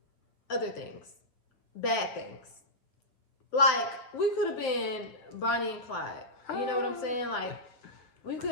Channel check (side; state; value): right; late; 8.2 ms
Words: other things. Bad things. Like, we could have been Bonnie and Clyde. You know what I'm saying? Like, we